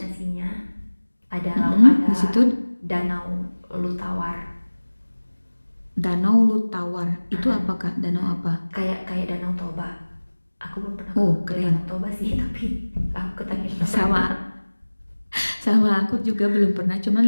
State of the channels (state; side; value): inverted; both; correlation -1.00